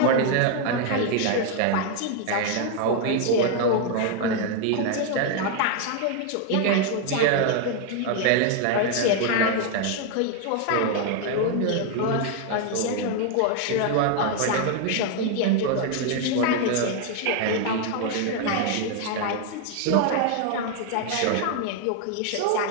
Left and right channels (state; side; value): different; both; correlation 0.01